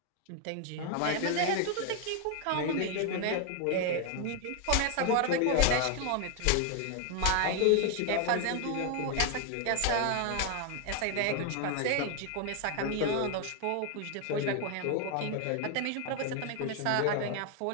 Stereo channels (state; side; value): different; both; correlation 0.01